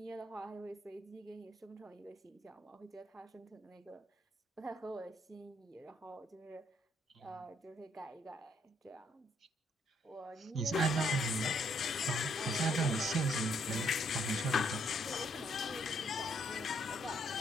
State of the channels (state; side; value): normal; both; correlation 0.70